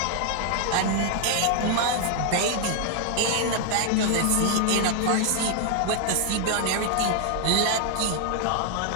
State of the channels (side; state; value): both; different; correlation 0.00